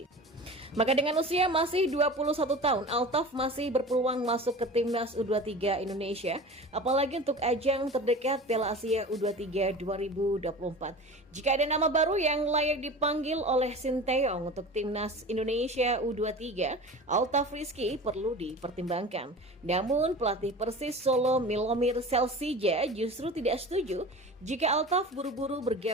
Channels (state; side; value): normal; both; correlation 0.36